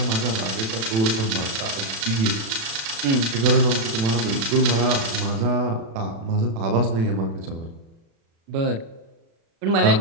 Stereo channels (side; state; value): left; late; 36 ms